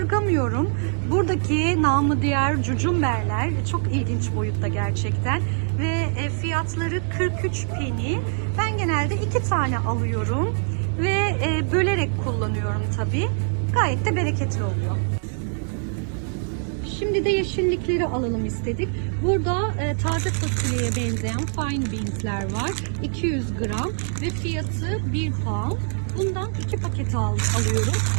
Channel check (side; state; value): left; silent; 56 dB below the other